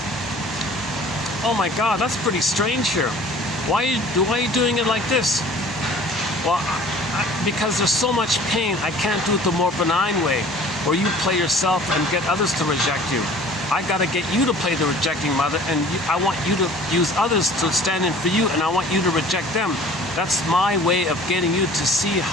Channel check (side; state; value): both; normal; correlation 0.48